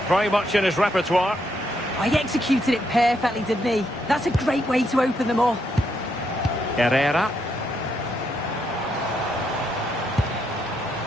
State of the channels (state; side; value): normal; both; correlation 0.77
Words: very much in his repertoire. Oh, he executed it perfectly, didn't he? That's a great way to open them up. Herrera.